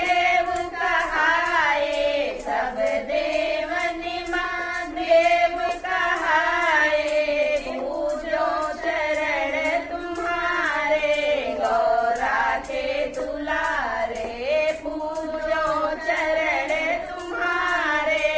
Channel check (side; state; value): both; identical; correlation 1.00